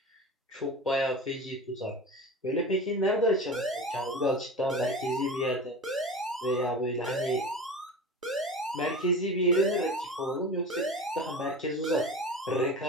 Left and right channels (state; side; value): normal; both; correlation 0.32